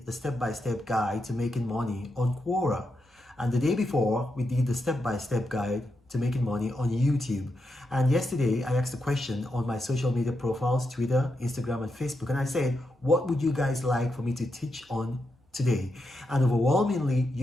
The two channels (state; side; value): normal; both; correlation 0.85